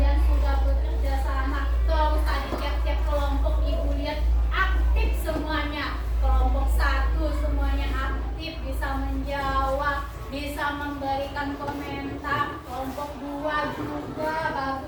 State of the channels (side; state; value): both; identical; correlation 1.00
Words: sudah bekerja sama. Terus tadi tiap-tiap kelompok ibu lihat aktif semuanya. Kelompok 1 semuanya aktif, bisa menjawab, bisa memberikan komentar. Kelompok 2 juga